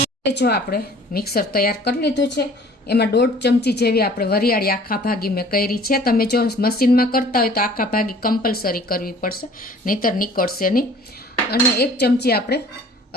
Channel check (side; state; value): both; normal; correlation 0.51